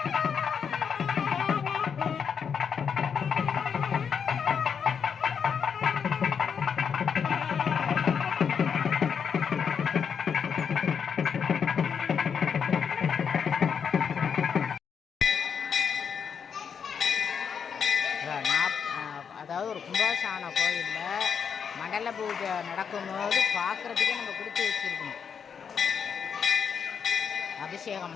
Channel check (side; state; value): right; quieter; 6.9 dB